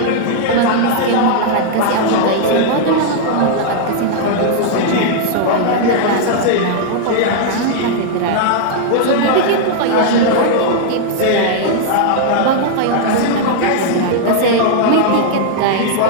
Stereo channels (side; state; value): both; different; correlation -0.01